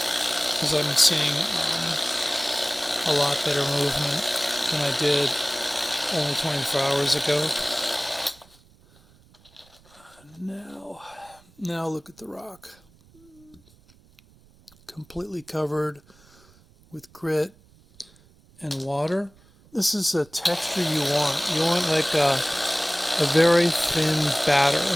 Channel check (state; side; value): noise; right; rumble, 29 dB below the sound